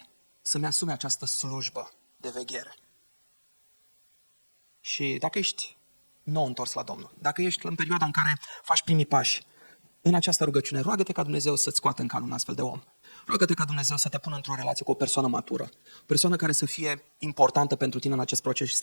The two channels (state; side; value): inverted; both; correlation -1.00